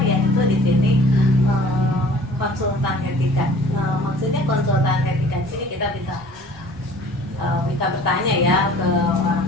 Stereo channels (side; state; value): both; normal; correlation 0.50